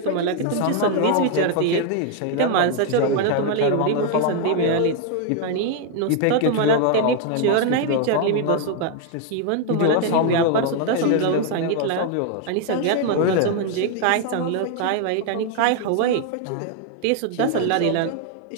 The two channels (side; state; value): both; different; correlation 0.00